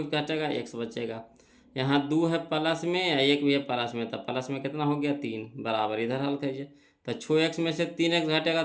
घटेगा x बचेगा। यहाँ 2 है प्लस में या 1 भी है प्लस में, तो प्लस में कितना हो गया 3 बराबर। इधर हल कीजिए, तो 6x में से 3x घटेगा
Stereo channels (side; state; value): both; identical; correlation 1.00